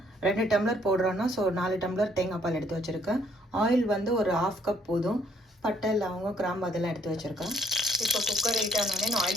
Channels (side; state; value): both; normal; correlation 0.67